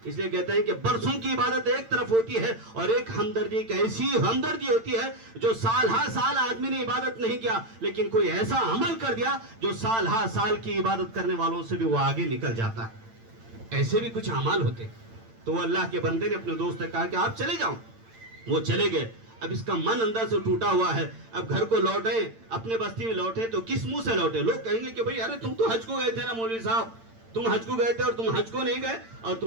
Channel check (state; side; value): late; left; 8.9 ms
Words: اس لیے کہتے ہیں کہ برسوں کی عبادت ایک طرف ہوتی ہے، اور ایک ہمدردی، ایک ایسی ہمدردی ہوتی ہے جو سال ہر سال آدمی نے عبادت نہیں کیا، لیکن کوئی ایسا عمل کر دیا جو سال ہر سال کی عبادت کرنے والوں سے بھی وہ آگے نکل جاتا ہے. ایسے بھی کچھ اعمال ہوتے. تو وہ اللہ کے بندے نے اپنے دوست سے کہا کہ آپ چلے جاؤ. وہ چلے گئے. اب اس کا من اندر سے ٹوٹا ہوا ہے. اب گھر کو لوٹے، اپنے بستی میں لوٹے تو کس منہ سے لوٹے؟ لوگ کہیں گے کہ بھئی ارے تم تو حج کو گئے تھے نا مولوی صاحب، تم حج کو گئے تھے اور تم حج کو نہیں گئے اور